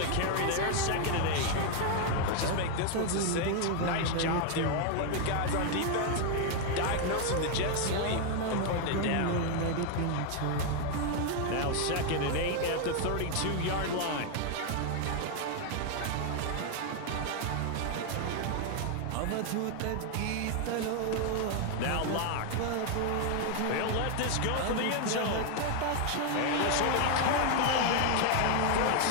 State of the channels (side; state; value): both; different; correlation 0.01